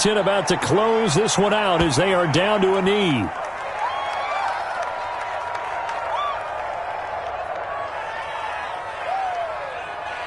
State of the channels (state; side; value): identical; both; correlation 1.00